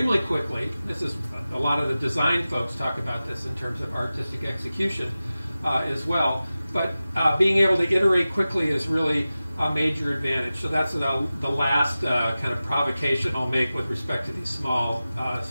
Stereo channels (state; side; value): inverted; both; correlation -0.95